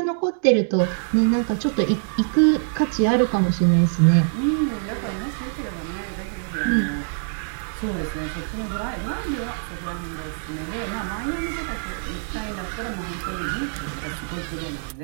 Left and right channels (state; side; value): silent; left; digital silence